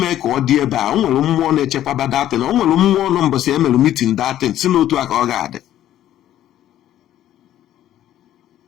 ka ọ dị ebe a. O nwere mmụọ na-echekwaba that thing. O nwere mmụọ nọ mbọsị emelu meeting that thing si n'otu a ka ọ ga-adị.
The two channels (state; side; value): quieter; right; 12.3 dB